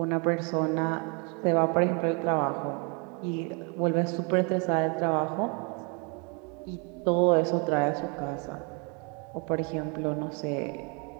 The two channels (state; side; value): quieter; left; 33.1 dB